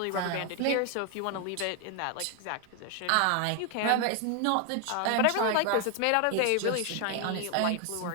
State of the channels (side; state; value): both; different; correlation 0.01